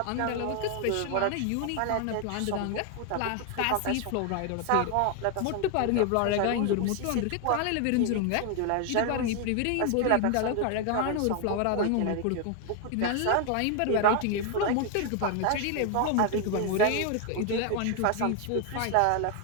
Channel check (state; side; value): different; both; correlation 0.01